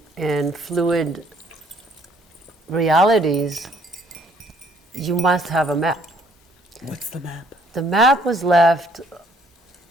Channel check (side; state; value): both; normal; correlation 0.64